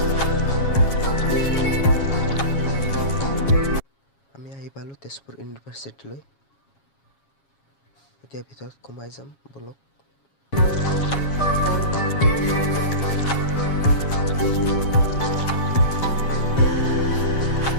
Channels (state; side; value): late; right; 7.3 ms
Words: পালো তেজপুৰ ইউনিভাৰ্চিটিলৈ। এতিয়া ভিতৰত সোমাই যাম বলক।